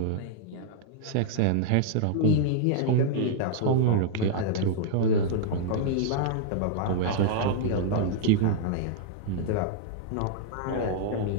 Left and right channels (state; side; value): different; both; correlation -0.01